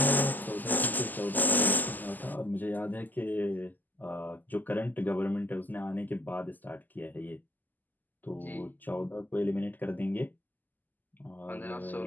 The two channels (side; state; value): right; late; 0.085 ms